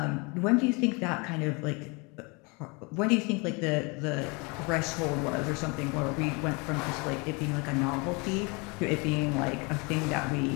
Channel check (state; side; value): quieter; right; 29.6 dB